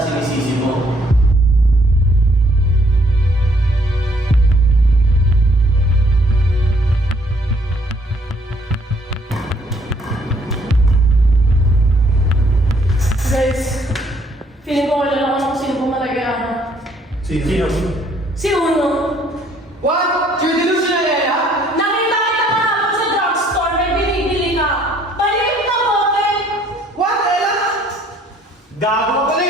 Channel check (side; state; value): both; normal; correlation 0.64